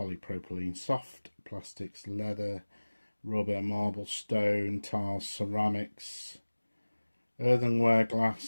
soft plastics, leather, rubber, marble, stone, tiles, ceramics, earthenware,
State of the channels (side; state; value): both; inverted; correlation -1.00